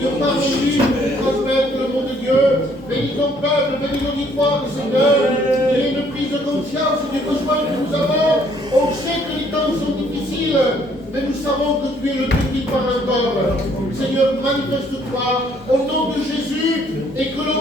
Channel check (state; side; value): normal; both; correlation 0.64